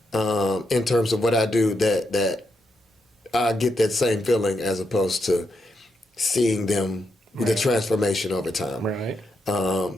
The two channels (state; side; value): normal; both; correlation 0.82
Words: in terms of what I do that I get that same feeling as opposed to seeing them, the transformation over time. Right.